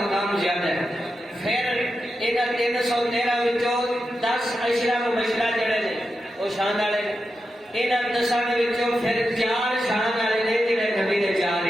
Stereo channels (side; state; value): both; normal; correlation 0.89